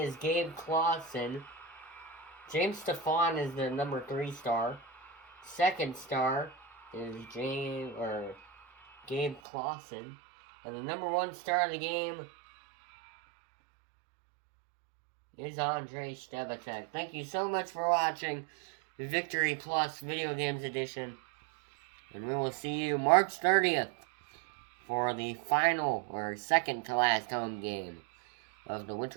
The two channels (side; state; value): left; drops out; at 9.4 s